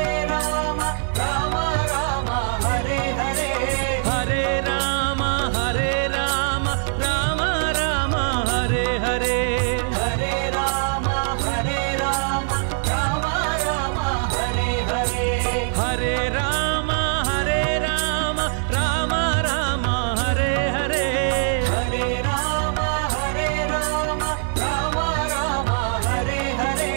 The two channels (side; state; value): left; silent; digital silence